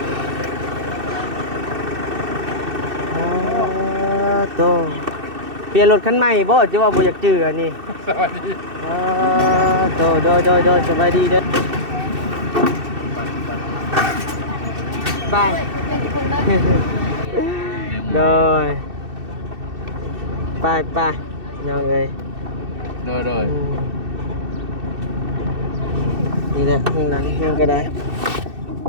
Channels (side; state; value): left; late; 2.7 ms